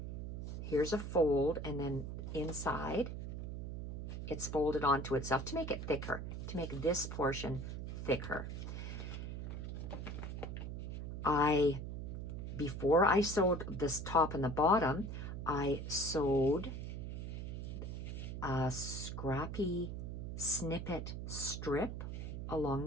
Here's a fold, and then inside it's folded onto itself to make it thicker, to make this portion thicker. Before I sewed this top and the bottom, I sewed a scrappy snippet strip along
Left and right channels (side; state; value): right; noise; hum, 5 dB below the sound